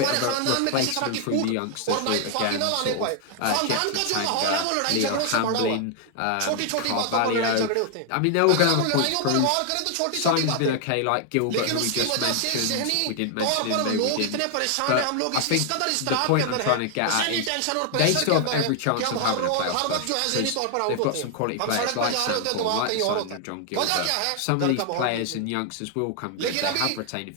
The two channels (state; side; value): different; both; correlation 0.00